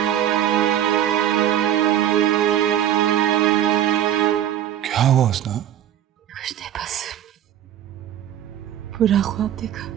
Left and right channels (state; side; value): quieter; left; 10.9 dB